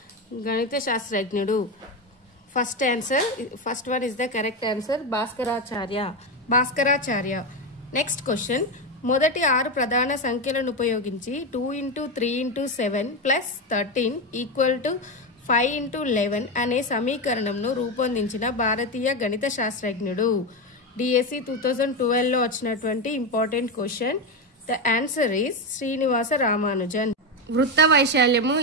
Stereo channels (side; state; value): both; normal; correlation 0.13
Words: గణిత శాస్త్రజ్ఞుడు. First one is the correct answer, Bhaskaracharya. Next question, మొదటి 6 ప్రధాన సంఖ్యలను ఉపయోగించి 2 × 3 × 7 + 13 = 5 × 11 అనే సమీకరణంను రూపొందించిన భారతీయ గణిత శాస్త్రజ్ఞుడు. డిఎస్సి 2012లో వచ్చినటువంటి important question. The answer is Srinivasa Ramanujan. వృత్త వైశాల్యము